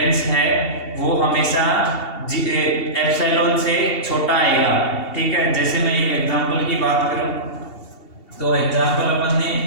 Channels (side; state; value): right; late; 2.7 ms